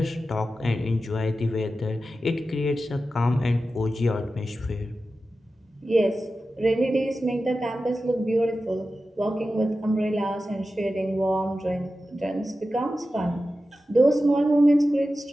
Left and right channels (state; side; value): normal; both; correlation 0.93